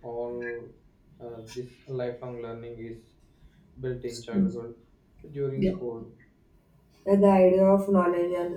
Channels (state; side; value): identical; both; correlation 1.00